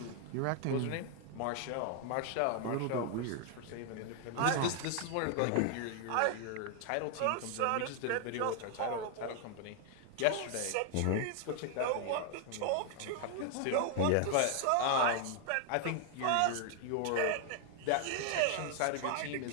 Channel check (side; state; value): both; different; correlation 0.00